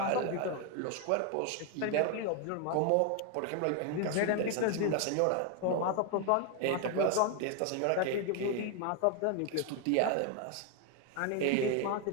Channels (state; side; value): different; both; correlation 0.01